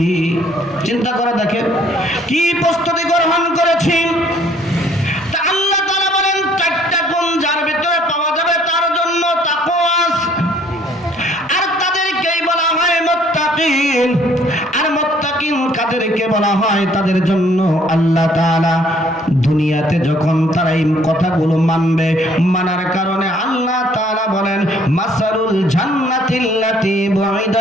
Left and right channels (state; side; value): normal; both; correlation 0.61